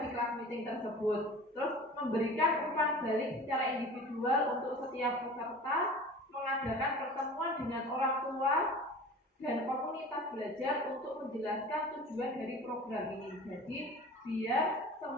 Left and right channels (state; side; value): normal; both; correlation 0.40